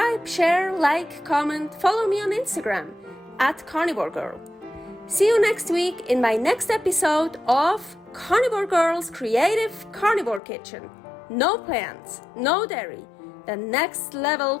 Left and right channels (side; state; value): right; drops out; at 10.4 s